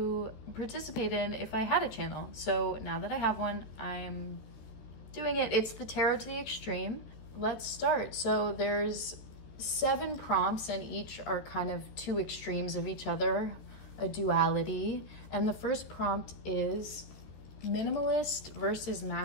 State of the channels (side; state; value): right; late; 13 ms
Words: participate in if I had a channel. So now that I have one, I'm doing it. It's the Tarot to the Extreme. Let's start. So there's 7 prompts, and each are kind of 2 extremes of each other, a duality. And the first prompt is minimalist versus